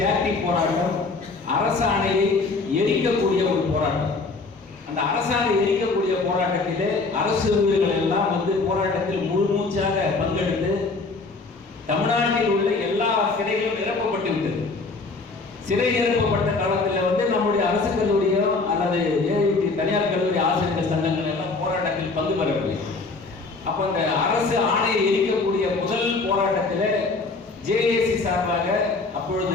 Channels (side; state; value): right; quieter; 3.8 dB